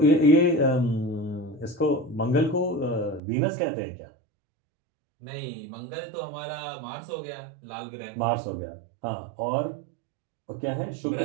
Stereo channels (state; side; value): drops out; left; at 3.2 s